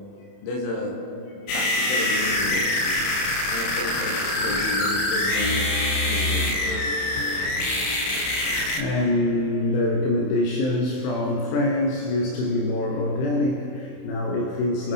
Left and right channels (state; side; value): late; right; 31 ms